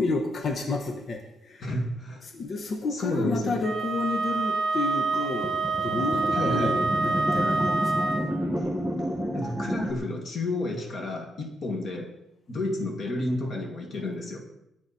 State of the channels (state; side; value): normal; both; correlation 0.81